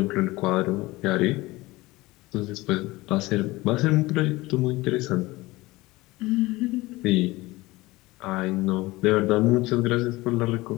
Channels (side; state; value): right; quieter; 20.3 dB